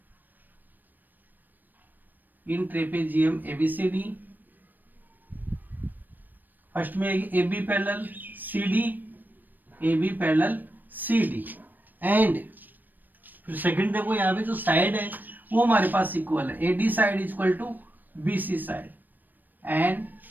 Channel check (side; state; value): left; late; 0.089 ms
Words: ABCD। फर्स्ट में AB parallel CD, AB parallel CD and फिर सेकंड देखो यहाँ पे जो साइड है वो हमारे पास इक्वल है। AD side is equal to BC side and